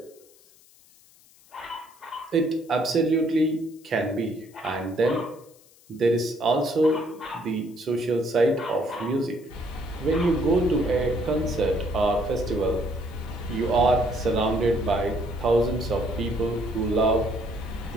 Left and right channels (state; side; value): noise; left; hiss, 27 dB below the sound